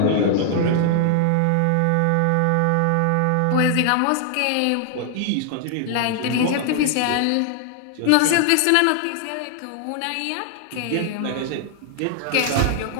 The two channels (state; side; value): different; both; correlation 0.00